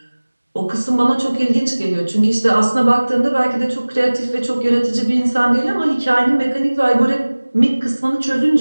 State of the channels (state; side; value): inverted; both; correlation -1.00